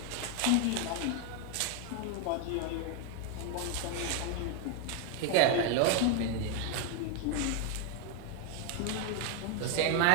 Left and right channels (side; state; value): both; different; correlation 0.01